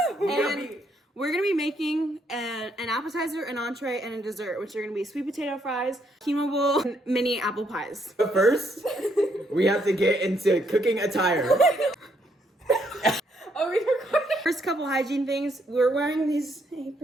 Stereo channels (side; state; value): both; normal; correlation 0.73